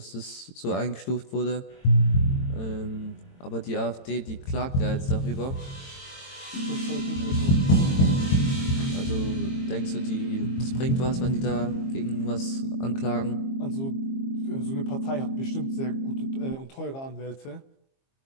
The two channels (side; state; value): right; late; 22 ms